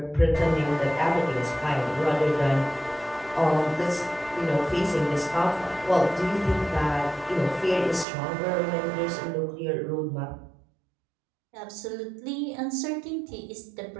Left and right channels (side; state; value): left; drops out; at 8.1 s